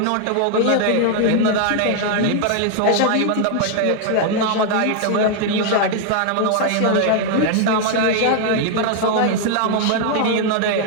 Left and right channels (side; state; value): both; different; correlation 0.00